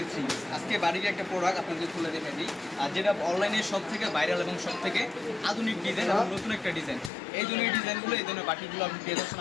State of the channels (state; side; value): drops out; right; at 7.1 s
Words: থ্রি। আজকে বাটিকের একটা প্রোডাক্ট আপনাদের তুলে দেখে দিই, আর যেটা অনলাইনে সব থেকে ভাইরাল এবং সব থেকে আধুনিক ডিজাইন এবং নতুন একটা ডিজাইন। এই ধরনের ডিজাইনগুলো, এই ধরনের বাটিকগুলো আপনি পেয়ে যাচ্ছেন